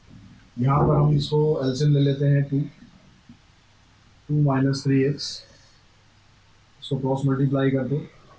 यहाँ पर हम इसको एलसीएम ले लेते हैं, 2 - 3x, इसको क्रॉस मल्टीप्लाई कर दो,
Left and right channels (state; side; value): identical; both; correlation 1.00